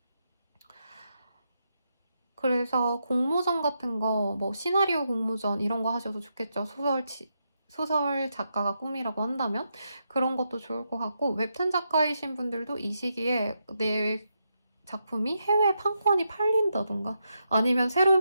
그래서 공모전 같은 거, 뭐 시나리오 공모전 이런 거 하셔도 좋겠죠. 소설 작가가 꿈이라고 한다면 그런 것도 좋을 것 같고 웹툰 작가이신 분들도 이 시기에 내 작품이 해외 판권이 팔린다던가 아니면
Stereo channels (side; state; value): both; inverted; correlation -0.83